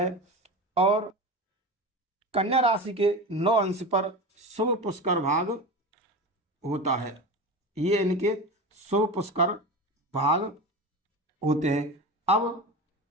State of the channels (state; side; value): normal; both; correlation 0.27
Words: और कन्या राशि के 9 अंश पर शुभ पुष्कर भाग होता है। ये इनके शुभ पुष्कर भाग होते हैं। अब